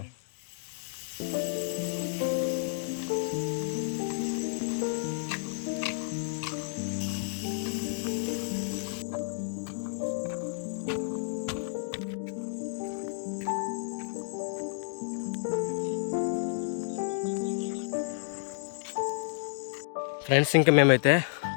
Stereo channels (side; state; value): right; silent; digital silence